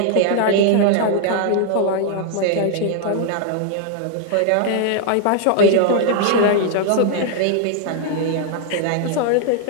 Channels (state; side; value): different; both; correlation 0.00